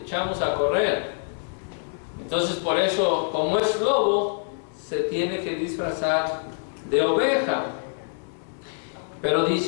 a correr. Entonces, por eso, como es lobo, se tiene que disfrazar de oveja. Pero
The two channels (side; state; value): right; silent; 61 dB below the other